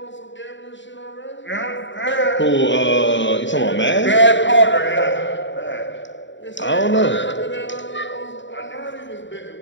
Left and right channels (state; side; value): late; right; 0.54 ms